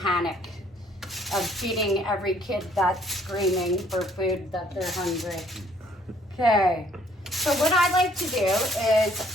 of feeding every kid that's screaming for food that they're hungry. Okay, so what I like to do is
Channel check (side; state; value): both; normal; correlation 0.63